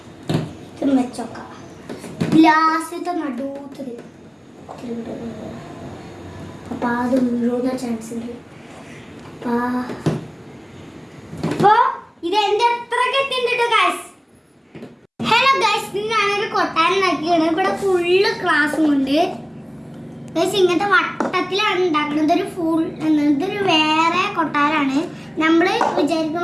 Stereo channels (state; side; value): identical; both; correlation 1.00